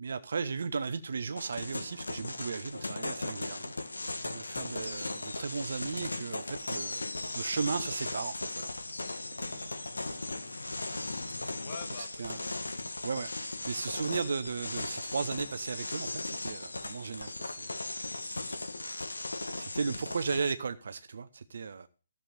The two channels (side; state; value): both; inverted; correlation -0.89